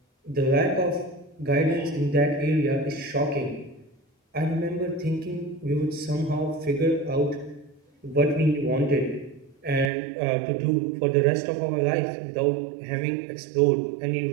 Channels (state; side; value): drops out; left; at 9.9 s